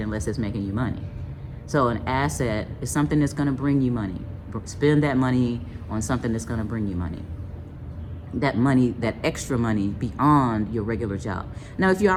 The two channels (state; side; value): identical; both; correlation 1.00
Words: unless it's making you money. So an asset is something that's going to bring you money. Spend that money on something that's going to bring you money. That money, that extra money beyond your regular job. Now, if you